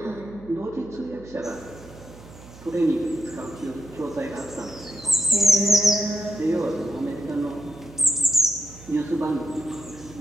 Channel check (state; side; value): noise; right; hum, 19 dB below the sound